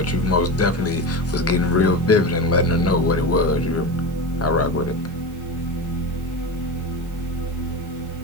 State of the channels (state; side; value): normal; both; correlation 0.24